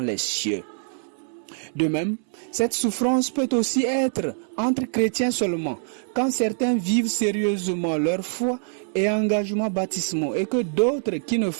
les cieux. De même, cette souffrance peut aussi être entre chrétiens seulement, quand certains vivent sérieusement leur foi et engagement baptismaux et que d'autres qui ne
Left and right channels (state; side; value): silent; left; 62 dB below the other